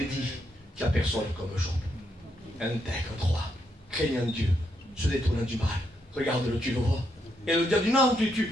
dit, qu'il n'y a personne comme Job. Intègre, droit, craignant Dieu, se détournant du mal. Regarde-le, tu le vois. Et le diable dit non,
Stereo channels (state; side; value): normal; both; correlation 0.79